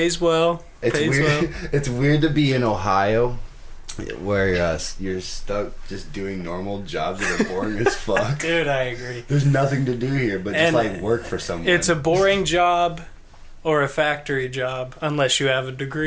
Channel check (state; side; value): identical; both; correlation 1.00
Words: well. It's Pays weird. well. It's weird to be in Ohio, where you're stuck just doing normal jobs that are boring as fuck. Dude, I agree. There's nothing to do here but just like work for someone. It's a boring job or a factory job unless you have a